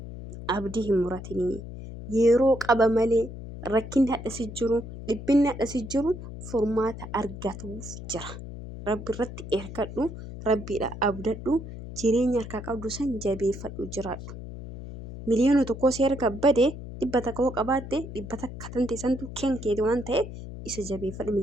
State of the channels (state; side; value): noise; left; hum, 11 dB below the sound